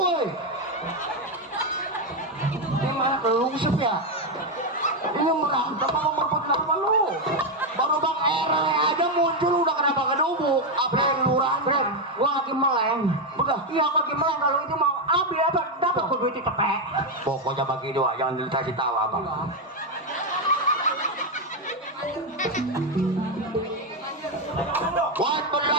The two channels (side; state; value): both; normal; correlation 0.05